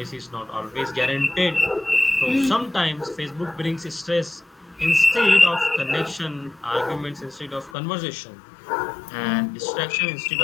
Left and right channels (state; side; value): drops out; right; at 7.8 s